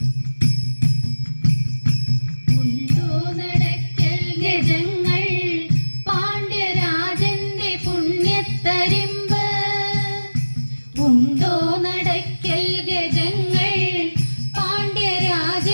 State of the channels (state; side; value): inverted; both; correlation -1.00